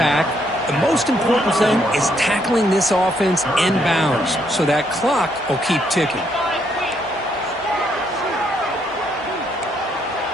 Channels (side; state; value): both; normal; correlation 0.73